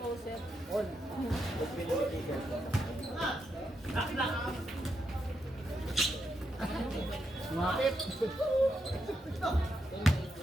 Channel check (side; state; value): both; normal; correlation 0.82